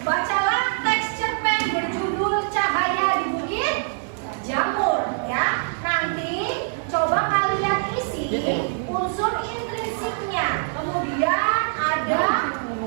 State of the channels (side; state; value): left; silent; 57 dB below the other